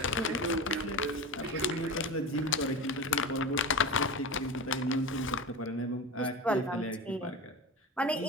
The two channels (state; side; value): normal; both; correlation 0.27